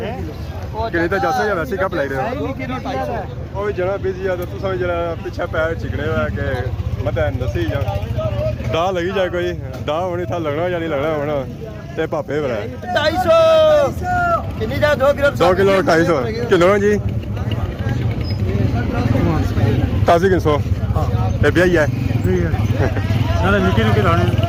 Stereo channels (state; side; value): identical; both; correlation 1.00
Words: किन्ने तो जासो या वैसे ही गप लाई रहा है वो भी जना बिजी है तो तू समझ जरा पीछे पैर चिकने हुआ है कि मत नसी जा दा लगी जाए कोई दा होनी था लगना या नहीं लगना होना ते पापे बड़ा 250 कितनी जा 2 किलो 2 किलो 250 किलो जी ताज़ी 300 ये भी है नाले निके निके दाने